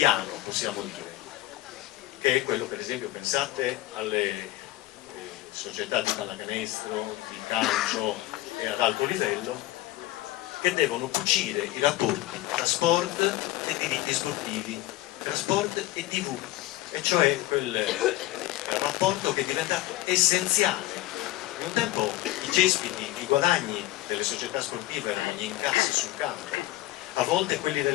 possiamo dire, che è quello, per esempio, pensate alle società di pallacanestro, di calcio e ad alto livello, che devono cucire i rapporti tra sport e diritti sportivi, tra sport e TV, e cioè quel rapporto che è diventato essenziale. In un tempo i cespiti, i guadagni delle società sportive erano gli incassi sul campo, a volte quelli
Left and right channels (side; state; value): right; quieter; 16.9 dB